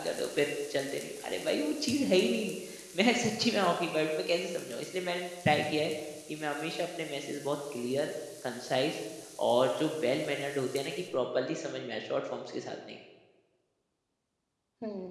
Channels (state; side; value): identical; both; correlation 1.00